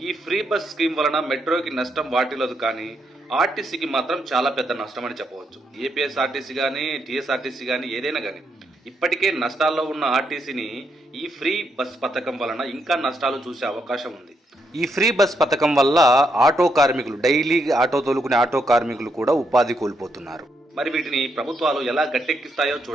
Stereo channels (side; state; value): both; normal; correlation 0.78